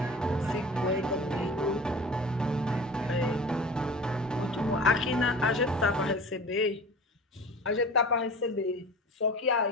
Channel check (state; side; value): normal; both; correlation 0.38